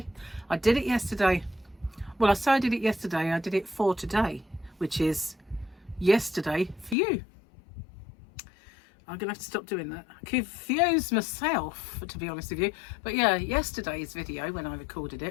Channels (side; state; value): right; drops out; at 7.0 s